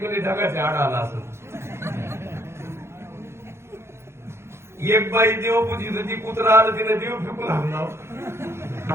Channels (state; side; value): late; left; 0.12 ms